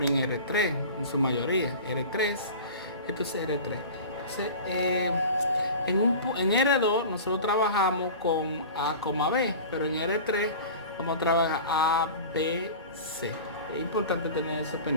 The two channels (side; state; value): both; inverted; correlation -0.36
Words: en R3, en su mayoría. R3, esto es R3. Entonces, en R2 nosotros trabajamos con A, B, pero en R3 vamos a trabajar A, B, C. Es importante tener eso